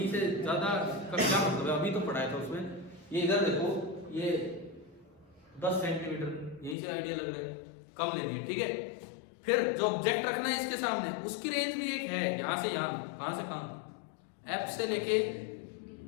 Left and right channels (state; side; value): drops out; right; at 6.8 s